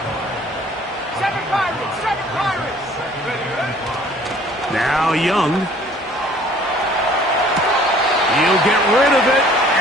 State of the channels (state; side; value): normal; both; correlation 0.54